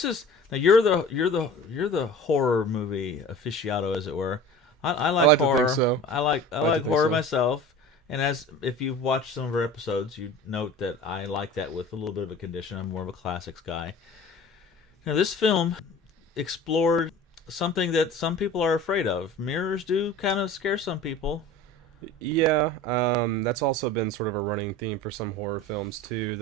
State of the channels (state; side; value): normal; both; correlation 0.40